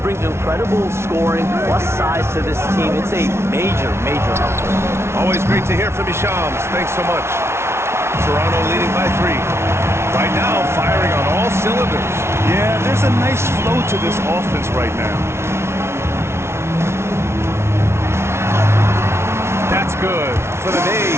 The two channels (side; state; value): left; late; 0.13 ms